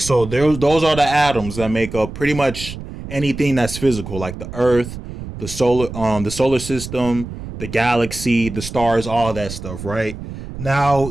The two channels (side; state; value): right; noise; rumble, 10 dB below the sound